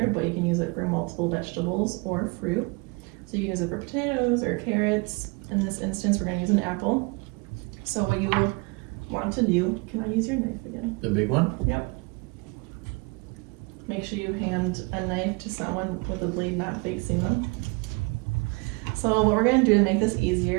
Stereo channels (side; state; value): left; quieter; 28.6 dB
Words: but you can use it for multiple vegetables or fruit. So you can use it for potatoes or carrots. In this instance, we're going to use an apple. So what you want to do, can I use your knife again? The big one? Yep. Make sure you hand a knife to someone with the blade not facing them. So what we're going to do to make this